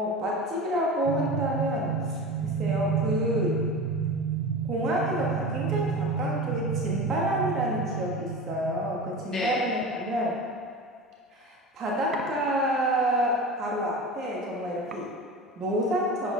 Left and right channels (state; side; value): normal; both; correlation 0.30